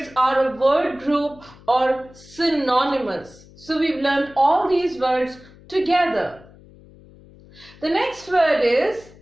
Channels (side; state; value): left; noise; hum, 23 dB below the sound